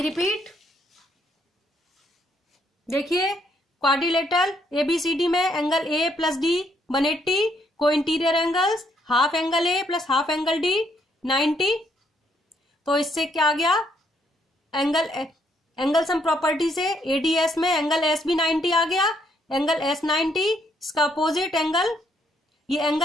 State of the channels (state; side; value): normal; both; correlation 0.72